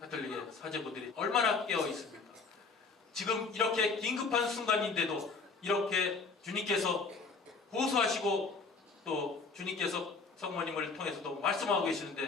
사제분들이 얼마나 깨어 있습니까? 지금 이렇게 긴급한 순간인데도 이렇게 주님께서 호소하시고 또 주님께서 성모님을 통해서도 말씀하고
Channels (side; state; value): right; quieter; 4.4 dB